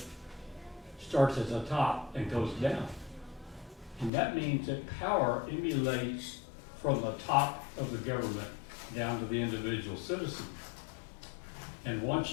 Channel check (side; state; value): right; drops out; at 4.1 s